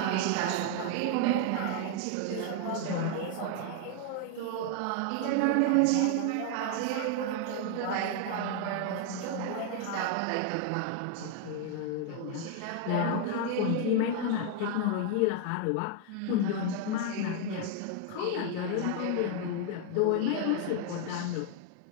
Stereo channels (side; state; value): both; different; correlation 0.00